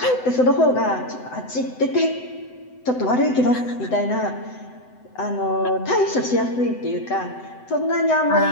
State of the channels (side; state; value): right; late; 7.9 ms